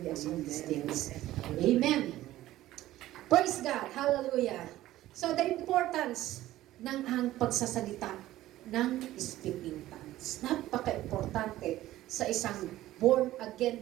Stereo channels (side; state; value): left; quieter; 15.1 dB